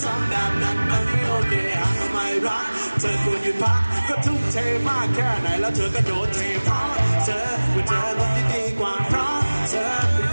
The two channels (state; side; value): inverted; both; correlation -1.00